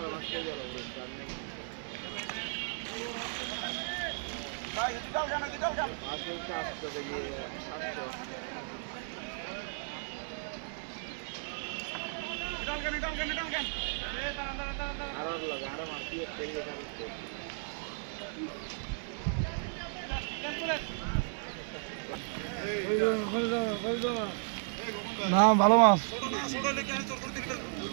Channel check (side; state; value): left; silent; 55 dB below the other